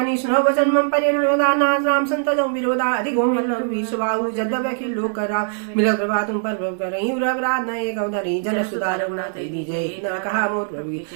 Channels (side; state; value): left; silent; digital silence